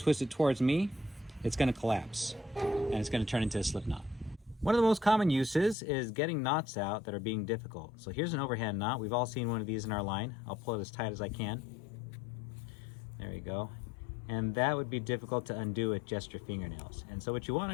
it towards me, it's going to collapse and it's going to turn into a slip knot. One of the most common uses is getting knots out that are being difficult. So here's an overhand knot. We've all seen one of these in our line. I'll pull it as tight as I can. There you go. And that would be difficult to undo with just your fingernails. And so what you want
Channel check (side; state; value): right; drops out; at 5.8 s